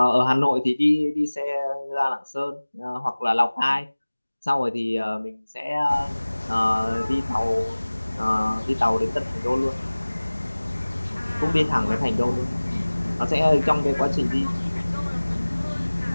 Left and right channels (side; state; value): both; inverted; correlation -1.00